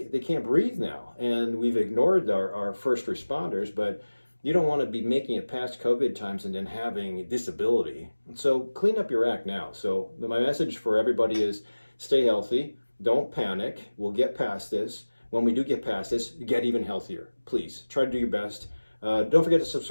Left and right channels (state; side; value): inverted; both; correlation -1.00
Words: can't breathe now. And we've ignored our first responders, but you don't want to be making it past COVID times and then having disability. So clean up your act now. So my message for everybody is stay healthy. Don't panic. We'll get past this. When we do get past this, get even healthier. Please try to do your best. Don't forget to